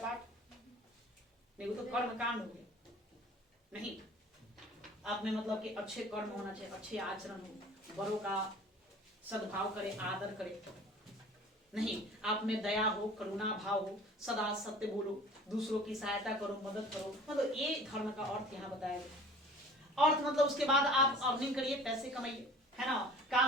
नहीं, वो तो कर्म कांड हो गया। नहीं, आप में मतलब कि अच्छे कर्म होना चाहिए, अच्छे आचरण हो, बड़ों का सद्भाव करे, आदर करे। नहीं, आप में दया हो, करुणा भाव हो, सदा सत्य बोलो, दूसरों की सहायता करो, मदद करो। मतलब ये धर्म का अर्थ यहाँ बताया गया। अर्थ मतलब उसके बाद आप अर्निंग करिए, पैसे कमाइए, है ना।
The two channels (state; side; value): normal; both; correlation 0.46